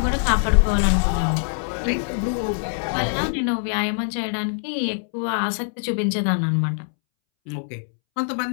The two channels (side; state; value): right; silent; 63 dB below the other